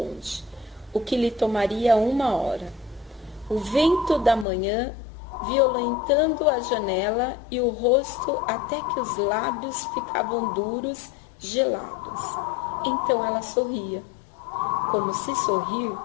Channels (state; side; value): drops out; right; at 4.5 s